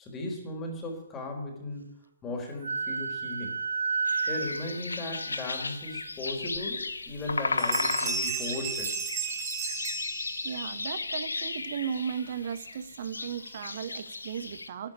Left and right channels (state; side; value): inverted; both; correlation -0.64